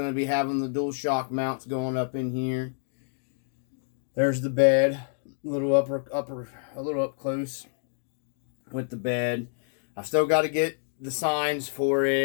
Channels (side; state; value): right; silent; digital silence